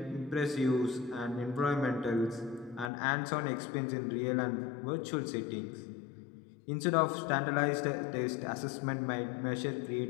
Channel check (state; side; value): drops out; right; at 2.9 s